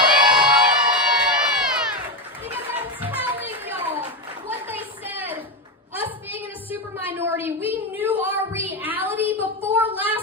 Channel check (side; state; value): both; normal; correlation 0.13